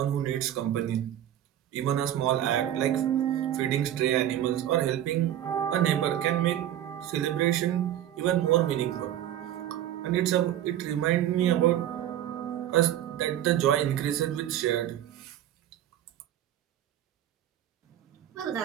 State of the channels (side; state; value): left; quieter; 11.7 dB